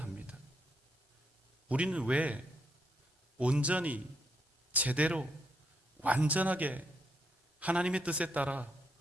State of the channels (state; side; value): normal; both; correlation 0.77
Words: 우리는 왜 온전히 제대로 완전하게 하나님의 뜻에 따라